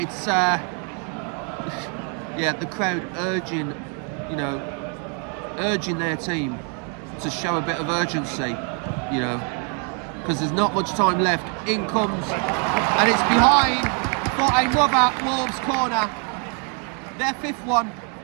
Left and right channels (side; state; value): left; quieter; 39.3 dB